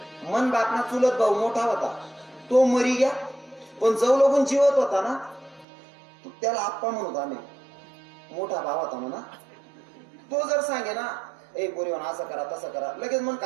मन बापना चुलत भाऊ मोठा होता तो मरी गया पण जव लोगून जीवत होता ना त्याला आप्पा म्हणत आम्ही मोठा भाव होता म्हणा तो जर सांगे ना ए बोरीवन असं करा तसं करा लगेच मन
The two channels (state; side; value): drops out; left; at 5.7 s